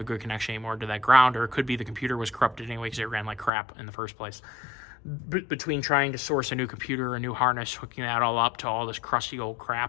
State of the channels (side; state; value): right; drops out; at 3.5 s